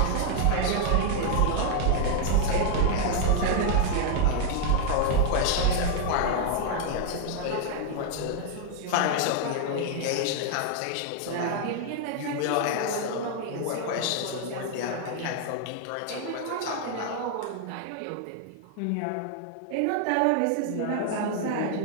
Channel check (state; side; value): different; both; correlation 0.00